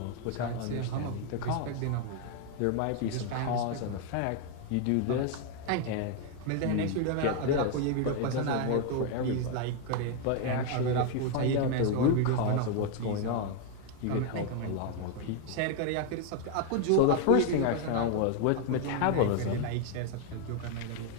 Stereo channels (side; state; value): both; different; correlation 0.01